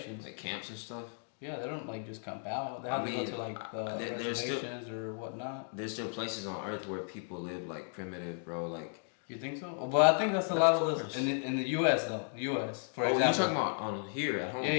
Like camps and stuff. Yeah, they don't like just camp out. They have to go to like the reservations or whatnot. There's still places on Earth where people live like primitive, bro. Like. You think so? But I think that's a lot of this in the U.S. though. U.S. for example. You're talking about on here at home.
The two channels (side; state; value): right; silent; 55 dB below the other